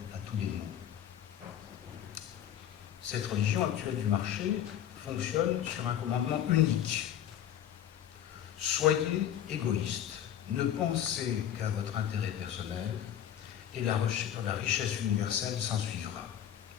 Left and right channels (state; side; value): quieter; right; 10.5 dB